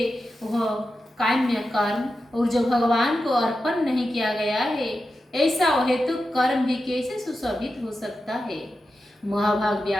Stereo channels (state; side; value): normal; both; correlation 0.90